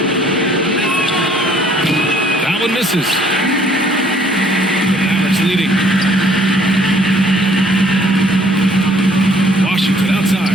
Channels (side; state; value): both; normal; correlation 0.61